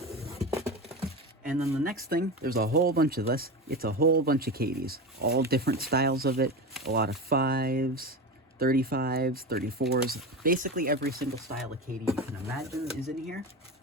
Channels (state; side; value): normal; both; correlation 0.24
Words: And then the next thing, there's a whole bunch of this. It's a whole bunch of Cadies. All different styles of it. A lot of 5s, 35s, 34s. Basically every single style of Cadie you can imagine is in here.